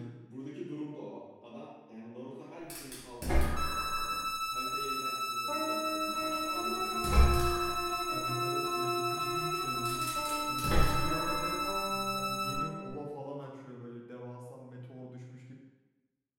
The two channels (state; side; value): identical; both; correlation 1.00